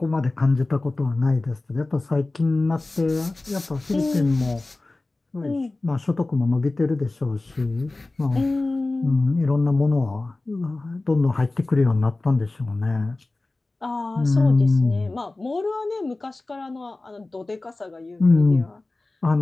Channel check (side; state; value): right; quieter; 3.1 dB